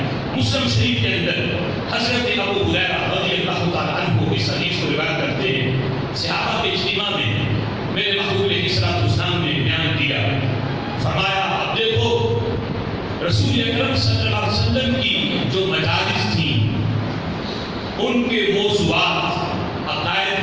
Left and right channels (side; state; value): both; identical; correlation 1.00